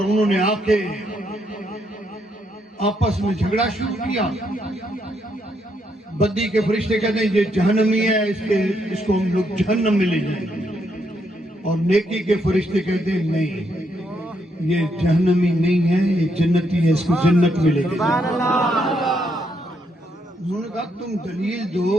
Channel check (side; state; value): both; normal; correlation 0.76